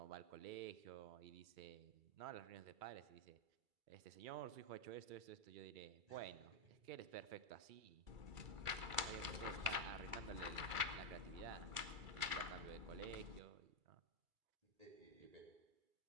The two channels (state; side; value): late; left; 2.3 ms